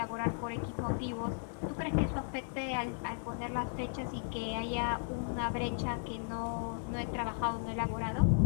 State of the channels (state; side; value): silent; right; digital silence